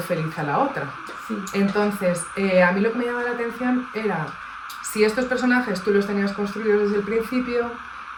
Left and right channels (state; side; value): identical; both; correlation 1.00